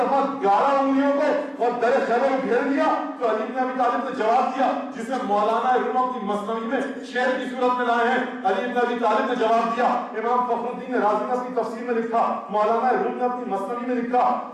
11 انگلیوں کو اور در خیبر میں گھیر دیا. تو علی بن ابی طالب نے جواب دیا, جسے مولانا روم اپنی مثنوی میں شعر کی صورت میں لائے ہیں. علی بن ابی طالب نے جواب دیا, امام فخر الدین رازی نے اپنی تفسیر میں لکھا, مولانا روم نے اپنی مثنوی میں لکھا,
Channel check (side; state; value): both; identical; correlation 1.00